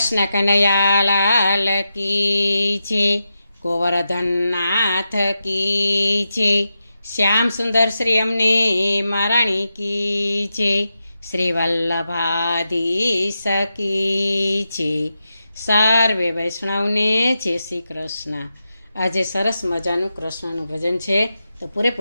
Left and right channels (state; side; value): inverted; both; correlation -0.89